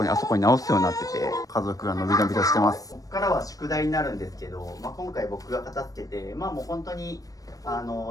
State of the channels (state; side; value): late; right; 0.17 ms